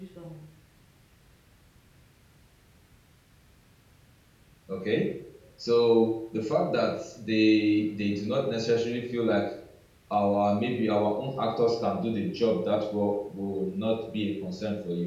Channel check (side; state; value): both; identical; correlation 1.00